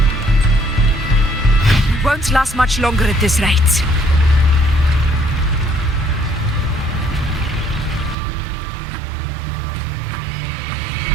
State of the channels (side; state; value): left; drops out; at 8.2 s